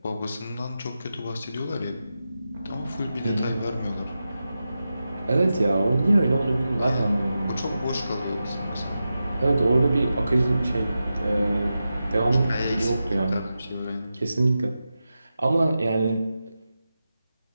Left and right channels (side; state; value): both; inverted; correlation -0.91